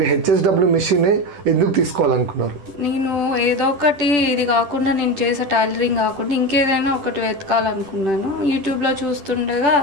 హెచ్ఎస్డబ్ల్యూ మిషన్ ఎందుకు తీసుకోవాలనుకున్నారు? నేను ఏదో ఒకటి ఇది కాకుండా నేను చేసే టైలరింగ్ కాకుండా ఇంకేదైనా ఒకటి వెతకాలనుకున్నాను. యూట్యూబ్లో చూస్తుండగా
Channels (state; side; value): late; left; 10 ms